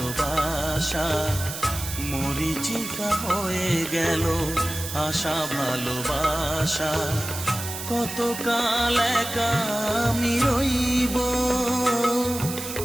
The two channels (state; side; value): noise; right; hiss, 8 dB below the sound